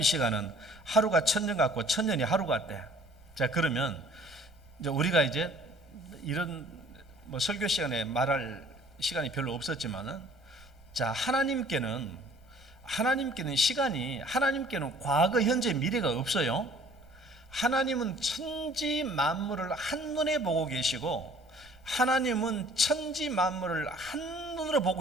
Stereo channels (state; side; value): noise; right; rumble, 25 dB below the sound